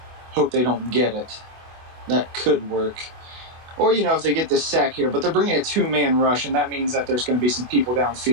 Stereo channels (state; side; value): late; left; 24 ms